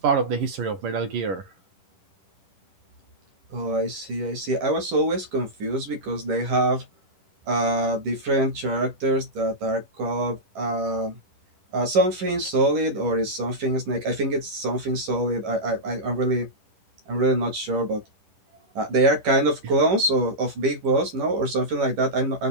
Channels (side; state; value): left; late; 11 ms